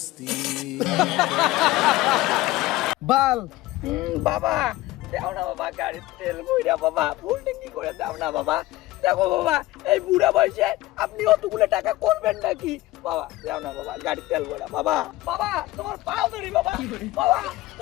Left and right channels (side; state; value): right; quieter; 17.8 dB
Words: বাল বাবা দাও না বাবা, গাড়ির তেল বইরা বাবা, ফুল ট্যাঙ্কি করে দাও না বাবা। দেখো বাবা, এই বুড়া বয়সে আপনি অতগুলো টাকা করবেন নাকি? বাবা দাও না বাবা, গাড়ির তেল ভরা বাবা। বাবা তোমার পা ধরি বাবা, বাবা